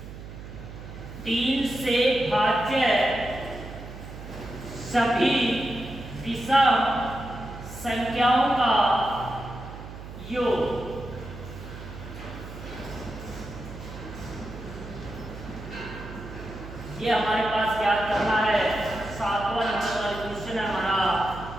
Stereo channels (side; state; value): right; noise; hum, 12 dB below the sound